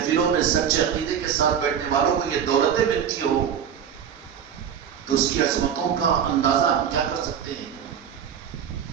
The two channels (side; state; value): left; quieter; 8.5 dB